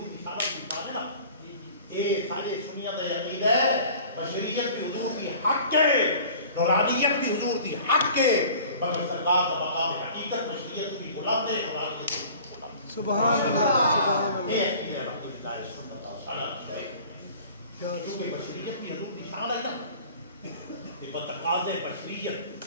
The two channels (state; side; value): inverted; both; correlation -0.46